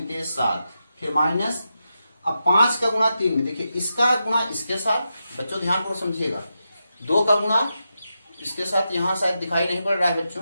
7, फिर माइनस, अब 5 का गुणा 3 में, देखिए इसका गुणा इसके साथ, बच्चों ध्यान पूर्वक समझिएगा, 2 का गुणा इसके साथ, यहाँ शायद दिखाई नहीं पड़ रहा है बच्चों,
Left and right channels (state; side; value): inverted; both; correlation -0.88